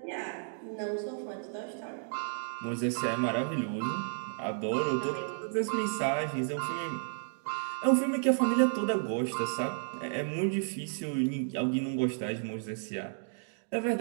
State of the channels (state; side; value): silent; left; digital silence